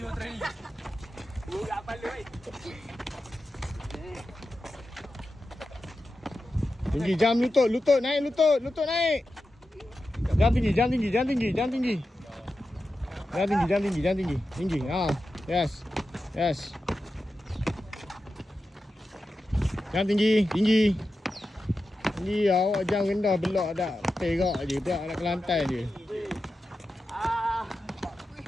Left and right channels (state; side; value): normal; both; correlation 0.91